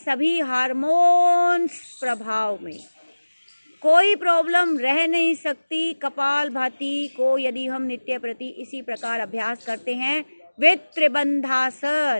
हार्मोन्स प्रभाव में कोई प्रॉब्लम रह नहीं सकती। कपालभाति को यदि हम नित्य प्रति इसी प्रकार अभ्यास करते हैं विद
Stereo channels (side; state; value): both; inverted; correlation -1.00